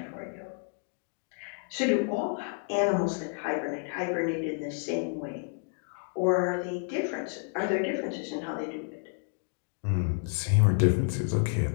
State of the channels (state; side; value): silent; right; 58 dB below the other